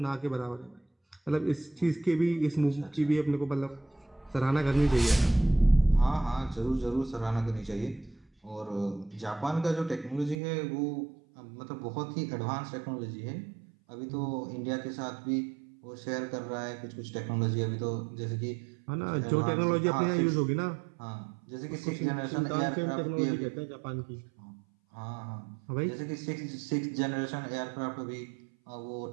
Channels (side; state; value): left; drops out; at 10.4 s